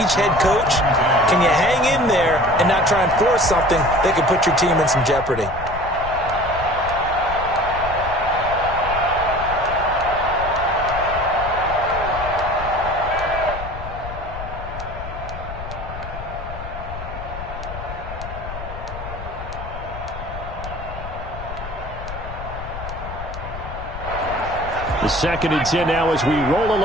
head coach, can you hang in there and not try and force something that could put your team in some jeopardy? The 2nd and 10 now as we roll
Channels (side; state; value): left; noise; rumble, 10 dB below the sound